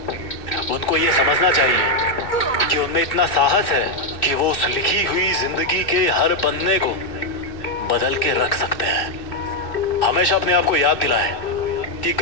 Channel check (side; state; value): right; late; 2.7 ms